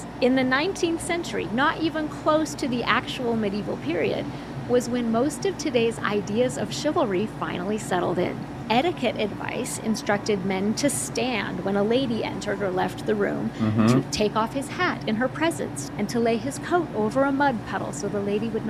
in the 19th century, not even close to the actual medieval period, was when most of today's ideas of chivalry finally settled in. Etiquette advice instructed men to stand when a lady entered or left the room, Mm-hmm. to take off his hat in her presence, and to lay his coat over a mud puddle so the lady would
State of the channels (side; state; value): both; identical; correlation 1.00